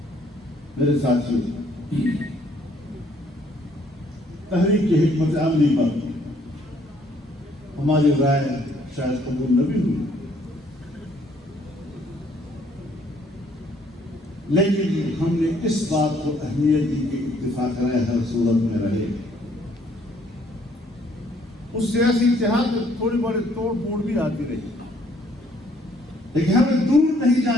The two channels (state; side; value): normal; both; correlation 0.64